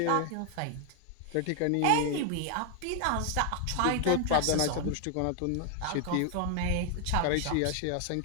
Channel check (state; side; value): different; both; correlation 0.00